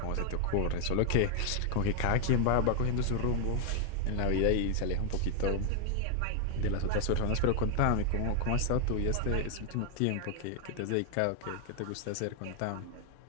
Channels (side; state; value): both; different; correlation 0.00